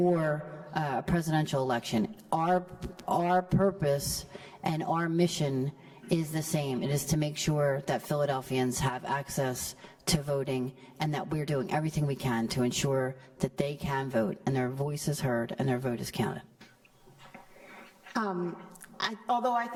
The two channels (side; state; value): both; identical; correlation 1.00